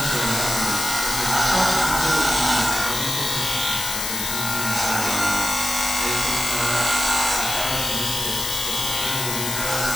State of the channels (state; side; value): noise; left; hiss, 2 dB below the sound